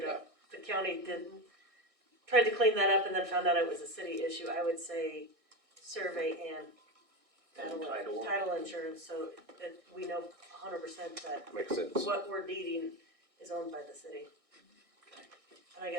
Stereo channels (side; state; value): left; late; 1.6 ms